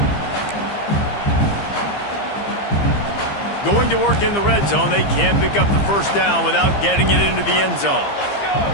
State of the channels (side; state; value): right; late; 15 ms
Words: Going to work in the red zone, they can't pick up the 1st down without getting it into the end zone.